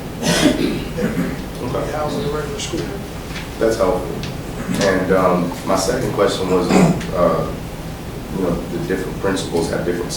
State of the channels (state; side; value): identical; both; correlation 1.00